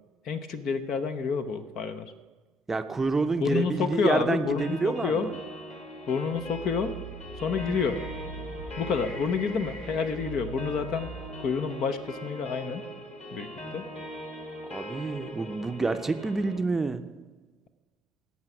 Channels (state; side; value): normal; both; correlation 0.67